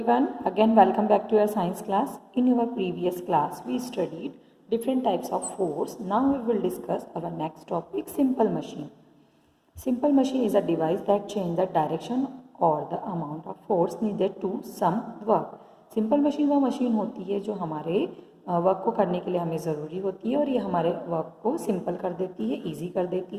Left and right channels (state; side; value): identical; both; correlation 1.00